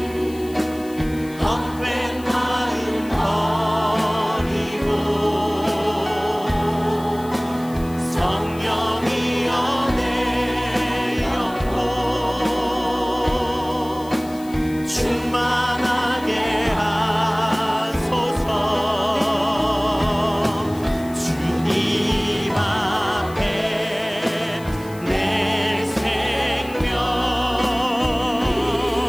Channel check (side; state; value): left; noise; hiss, 21 dB below the sound